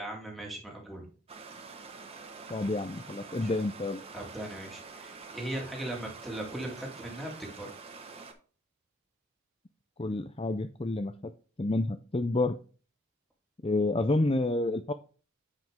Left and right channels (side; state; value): both; normal; correlation 0.70